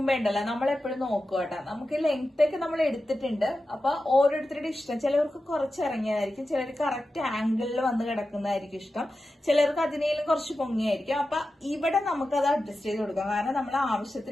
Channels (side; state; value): both; normal; correlation 0.92